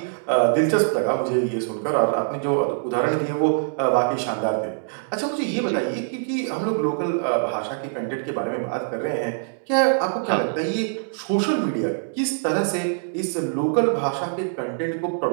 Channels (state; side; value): silent; left; digital silence